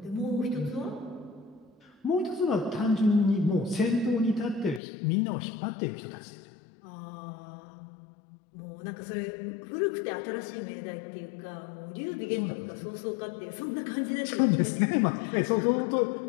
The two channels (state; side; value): drops out; right; at 4.8 s